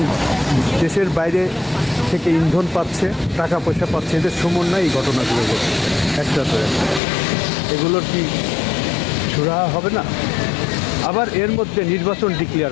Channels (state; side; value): drops out; right; at 7.0 s